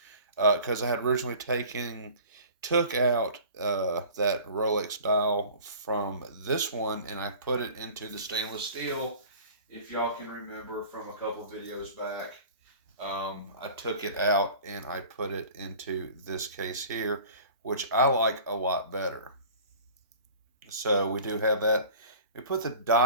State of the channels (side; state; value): both; inverted; correlation -0.43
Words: because I had originally took out that Rolex dial from this one and I put it into the stainless steel. If y'all can remember from a couple videos back, I took it out and I put it into this case here, which I like a lot better. So we do have that. We put the